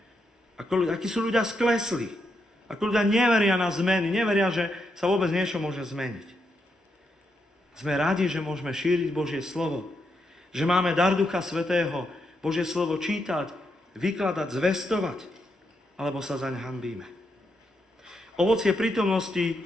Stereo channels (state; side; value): normal; both; correlation 0.81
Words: akí sú ľudia sklesli, ako ľudia neveria na zmeny, neveria, že sa vôbec niečo môže zmeniť. Sme radi, že môžeme šíriť Božie slovo, že máme dar Ducha Svätého, Božie slovo čítať, vykladať, zvestovať, alebo sa zaň hanbíme. Ovocie prítomnosti